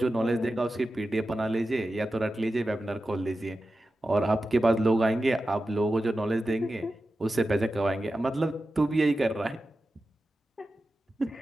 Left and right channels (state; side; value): normal; both; correlation 0.93